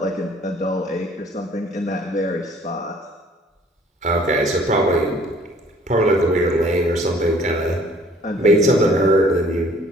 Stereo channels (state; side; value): normal; both; correlation 0.56